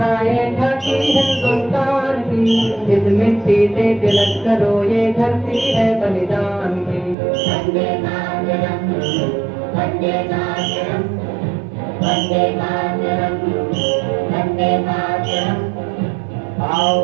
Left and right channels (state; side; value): drops out; left; at 7.2 s